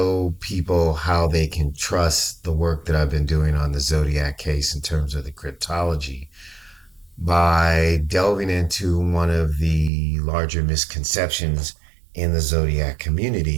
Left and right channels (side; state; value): left; drops out; at 9.9 s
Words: people how they can trust the work that I've been doing on the Zodiac case in terms of the cryptology by delving into one of the larger misconceptions in the Zodiac